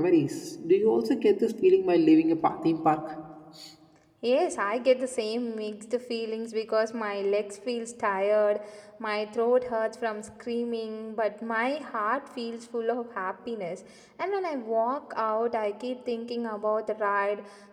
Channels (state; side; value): identical; both; correlation 1.00